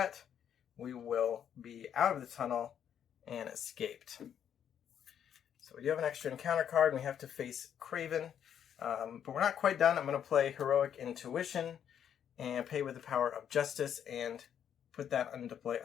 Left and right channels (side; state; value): right; quieter; 9.0 dB